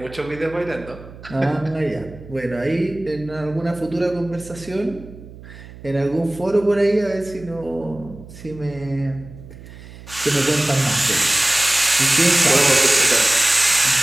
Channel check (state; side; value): noise; right; hum, 17 dB below the sound